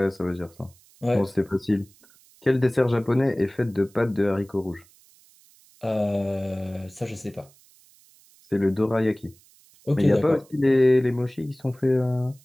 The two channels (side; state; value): right; noise; hiss, 29 dB below the sound